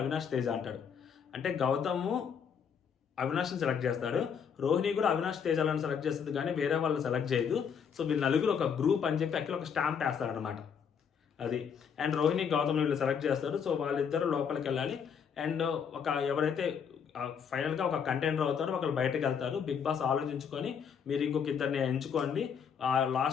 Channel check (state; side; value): quieter; right; 7.1 dB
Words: Teja అంటాడు. అంటే గౌతము అవినాష్ని సెలెక్ట్ చేస్తాడు, రోహిణి కూడా అవినాష్ తేజాలను సెలెక్ట్ చేస్తుంది, కానీ వేరే వాళ్ళని సెలెక్ట్ చేయదు. సో వీళ్ళు నలుగురు ఒక గ్రూప్ అని చెప్పి అక్కడ ఒక స్టాంప్ వేస్తాడు అనమాట అది. అండ్ రోహిణి గౌతమ్ వీళ్ళు సెలెక్ట్ చేస్తారు. సో వాళ్ళిద్దరు లోపలికి వెళ్ళాలి. అండ్ ఎవరైతే ఫైనల్గా ఒక కంటెండర్ అవుతారో ఒకరు బయటకు వెళ్తారు. బిగ్ బాస్ ఆలోచించుకొని మీరు ఇంకొక ఇద్దరిని ఎంచుకోండి.